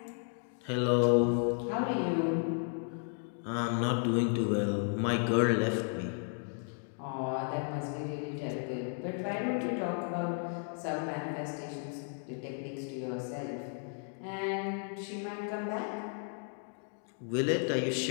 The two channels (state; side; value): silent; right; 55 dB below the other